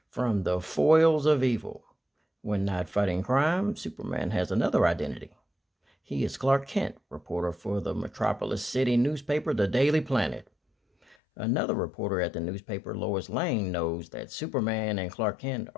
from the foils of evil. When not fighting crime, Superman has another identity. He is Clark Kent, reporter for the Metropolis City newspaper, The Daily Planet. Another reporter at the newspaper, Lois Lane, knows that Superman and Clark Kent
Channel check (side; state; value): right; drops out; at 11.2 s